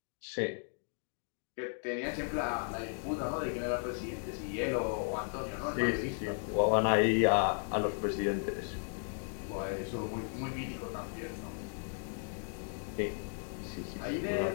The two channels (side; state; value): right; silent; 54 dB below the other